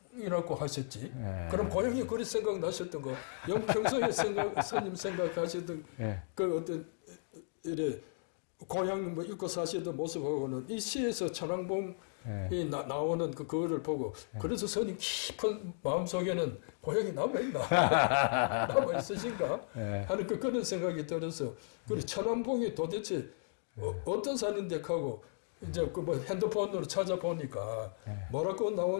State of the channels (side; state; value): right; silent; digital silence